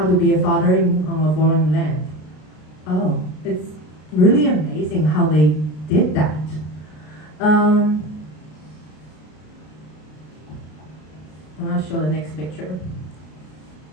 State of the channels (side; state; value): right; late; 33 ms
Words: to be a father on a foreign land. Oh, it's really amazing how they did that. I'm going to show the next picture.